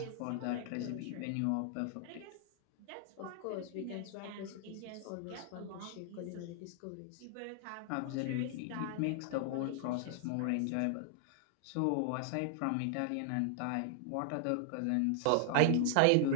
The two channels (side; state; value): both; different; correlation -0.01